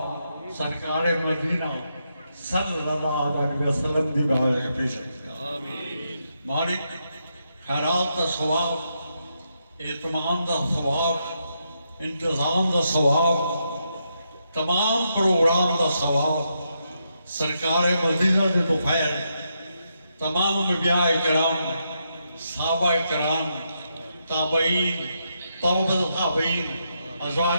سرکار مدینہ صلی اللہ علیہ وسلم دی بارگاہ میں پیش ہے مالک۔ خیرات کا ثواب، اہتمام کا ثواب، انتظام کا ثواب، تمام پروگرام کا ثواب سرکار مدینہ کے توفیل تمام انبیاء کرام، صحابہ کرام، تابعین، طبقۃ تابعین،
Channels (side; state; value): both; inverted; correlation -0.82